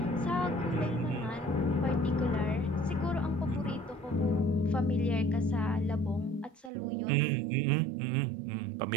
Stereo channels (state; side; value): drops out; left; at 6.7 s